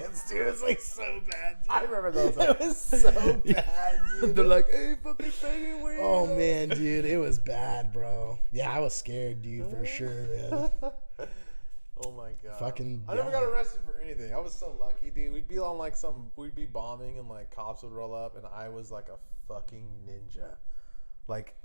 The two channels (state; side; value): inverted; both; correlation -1.00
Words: dude. It's like so bad, dude. I remember those. It was so bad, dude. They're like, "Hey, fucking faggot, wait." Oh man, dude, it was bad, bro. Yeah, I was scared, dude, for sure, man. Oh my god. Fucking. I never got arrested for anything. I was so lucky, dude. We'd be on like we'd be bombing and like cops would roll up, and I was like a fucking ninja. Like